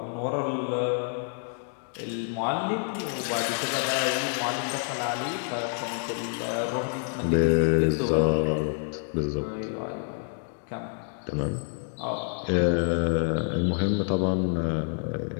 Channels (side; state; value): right; silent; 60 dB below the other